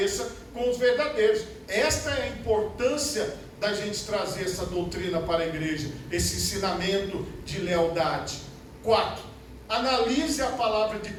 com os verdadeiros. Esta é a importância da gente trazer essa doutrina para a igreja, esse ensinamento de lealdade. 4. Analise a palavra de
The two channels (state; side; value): identical; both; correlation 1.00